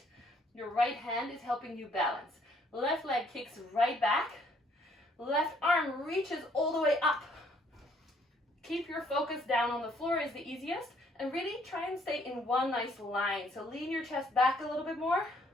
Your right hand is helping you balance. Left leg kicks right back. Left arm reaches all the way up. Keep your focus down on the floor is the easiest. And really try and stay in one nice line. So lean your chest back a little bit more.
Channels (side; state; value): both; normal; correlation 0.65